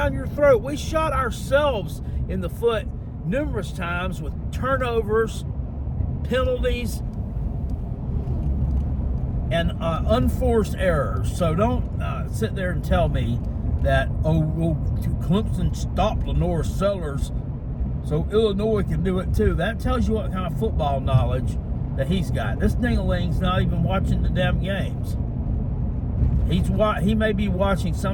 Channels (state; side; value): identical; both; correlation 1.00